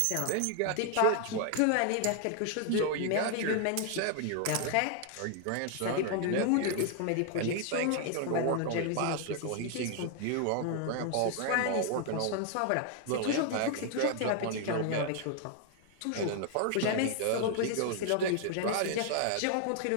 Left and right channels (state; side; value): different; both; correlation 0.00